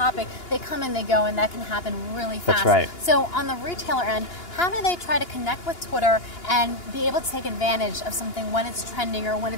they come and they go, and that can happen really fast. That's right. So on the retailer end, how do they try to connect with Twitter and be able to take advantage of something when it's trending or when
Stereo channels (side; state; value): right; late; 2.9 ms